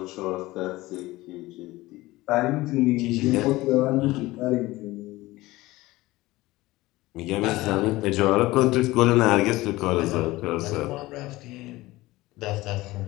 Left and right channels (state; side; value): quieter; right; 19.0 dB